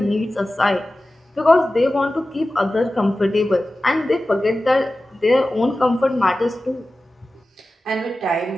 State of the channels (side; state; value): both; normal; correlation 0.95